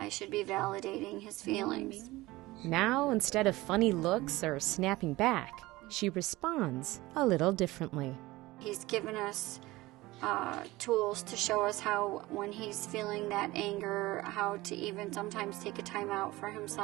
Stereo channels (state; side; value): quieter; left; 19.5 dB